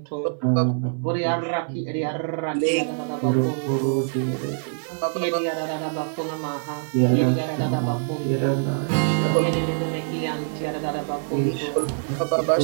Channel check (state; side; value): silent; left; digital silence